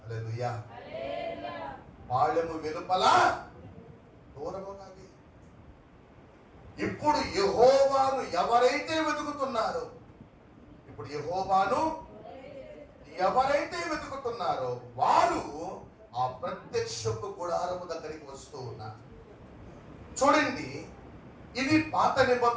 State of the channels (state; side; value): identical; both; correlation 1.00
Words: హల్లెలూయా. పాళెము వెలుపల దూరముగా వేయి. ఇప్పుడు యెహోవాను ఎవరైతే వెతుకుతున్నారో, ఇప్పుడు యెహోవాను ఎవరైతే వెతుకుతున్నారో వారు ఆ ప్రత్యక్షపు గుడారము దగ్గరికి వస్తూ ఉన్నారు. చూడండి, ఇది పాత